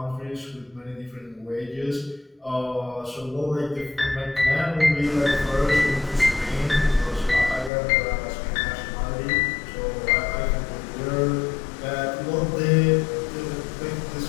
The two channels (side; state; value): right; drops out; at 7.7 s